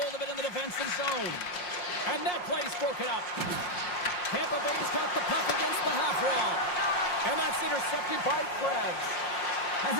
of it in the defensive zone. And that play's broken up. Tampa Bay's got the puck against the half wall. And that's intercepted by Krebs. As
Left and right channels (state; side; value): late; right; 5.6 ms